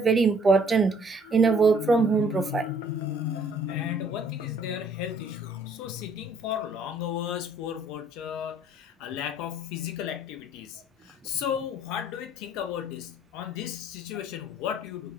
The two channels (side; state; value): both; normal; correlation 0.60